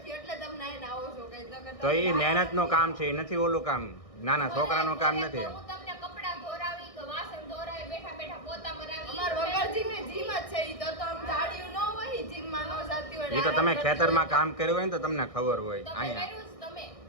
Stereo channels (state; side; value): late; right; 1.6 ms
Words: એટલે તમે નાઈને આવો છો કઈ તો ઈ મહેનતનું કામ છે, ઈ નથી ઓલું કામ. નાના છોકરાનું કામ નથી. હું તમને કપડા ધોરાવી કે વાસણ ધોરાવી બેઠા બેઠા પોતા મરાવી. અમાર વગર જીમે જીમ જ છે ઈ તો આમ જાડિયું ન હોય જીમમાં ન જાતી હોય. ઈ તો તમે ખેતરમાં કામ કર્યું હોય ને તો તમને ખબર હોય. તમે અહીંયા કર્યું છે તમે.